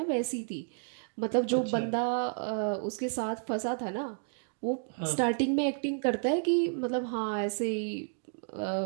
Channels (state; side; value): silent; left; digital silence